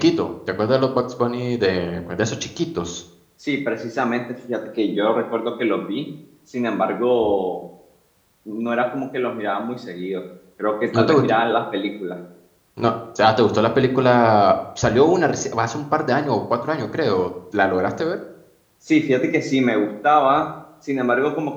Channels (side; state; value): both; identical; correlation 1.00